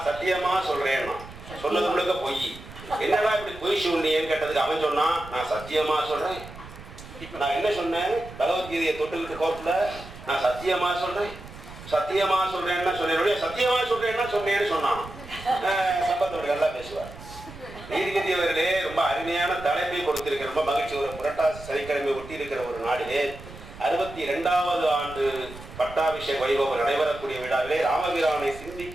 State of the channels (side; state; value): right; noise; rumble, 16 dB below the sound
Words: சத்தியமா சொல்றேன், சொன்னது முழுக்க பொய். என்னடா இப்படி பொய் சொன்னீன்னு கேட்டதுக்கு அவன் சொன்னான், நான் சத்தியமா சொல்றேன். இப்ப நான் என்ன சொன்னேன், பகவத்கீதையை தொட்டுக்கிட்டு கோர்ட்ல நான் சத்தியமா சொல்றேன், சத்தியமா சொல்றேன்னா சொன்னேன், சத்தியமா சொல்றேன்னா சொன்னேன்னு சொன்னான். சம்பத்தோட நல்லா பேசுவார். நீதிபதி அவர்களே ரொம்ப அருமையான தலைப்பை கொடுத்திருக்கிற, ரொம்ப மகிழ்ச்சி. ஒரு புரட்டாசி சனிக்கிழமை ஒட்டி இருக்கிற ஒரு நாளிலே 62வது ஆண்டு பட்டாபிஷேக வைபவம் நடைபெறக்கூடிய விழாவிலே ராமபிரானை